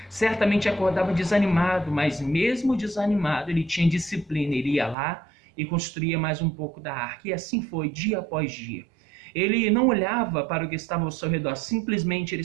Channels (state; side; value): drops out; left; at 5.0 s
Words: certamente acordava desanimado, mas mesmo desanimado, ele tinha disciplina, ele ia lá e construía mais um pouco da arca, e assim foi, dia após dia. Ele não olhava para o que estava ao seu redor, simplesmente ele